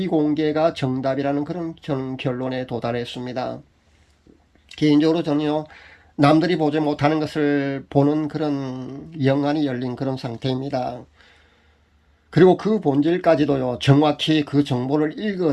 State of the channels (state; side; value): identical; both; correlation 1.00